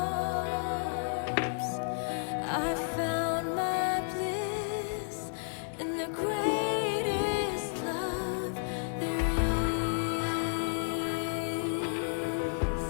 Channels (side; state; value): right; silent; digital silence